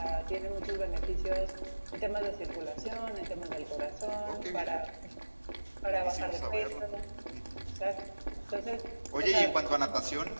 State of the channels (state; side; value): inverted; both; correlation -1.00